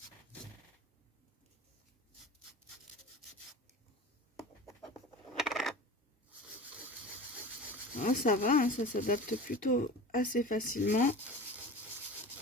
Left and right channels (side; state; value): both; normal; correlation 0.35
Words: Ah, ça va, hein, ça s'adapte plutôt assez facilement.